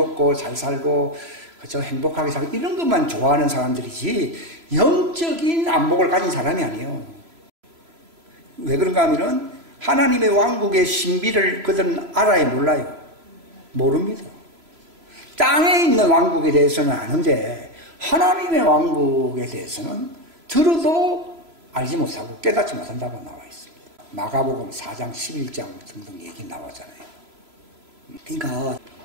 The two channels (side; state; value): left; late; 3.0 ms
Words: 잘 살고 그저 행복하게 살고 이런 것만 좋아하는 사람들이지 영적인 안목을 가진 사람이 아니에요. 왜 그런가 하면은 하나님의 왕국의 신비를 그들은 알아야 몰라요. 모릅니다. 땅에 있는 왕국에 대해서는 아는데 하나님의 왕국에 대해서는 들어도 알지 못하고 깨닫지 못한다고 나와 있습니다. 마가복음 4장 11장 등등 얘기 나오잖아요. 그러니까